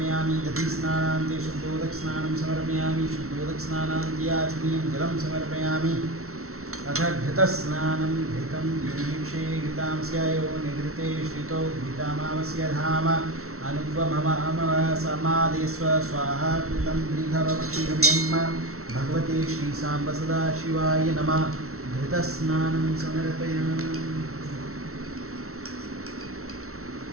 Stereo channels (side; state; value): left; late; 0.63 ms